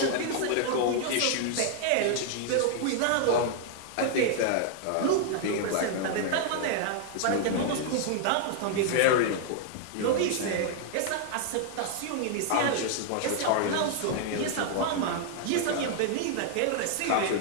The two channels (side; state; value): both; different; correlation 0.00